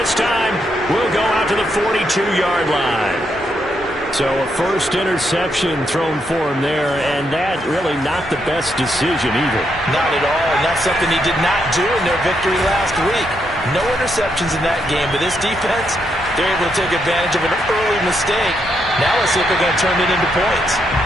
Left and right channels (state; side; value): normal; both; correlation 0.79